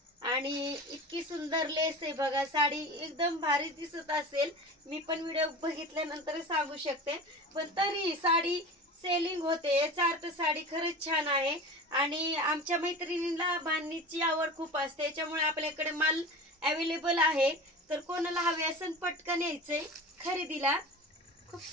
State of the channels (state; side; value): normal; both; correlation 0.33